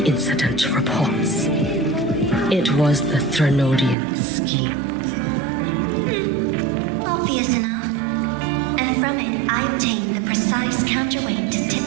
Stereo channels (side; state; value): left; drops out; at 4.0 s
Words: incident reports. It was the Threnodian scheme. Obvious enough. And from it, I obtained the precise counterweight to tip